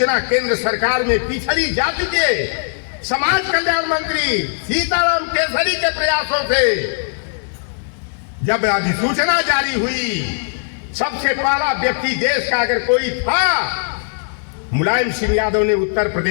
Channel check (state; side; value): silent; right; 67 dB below the other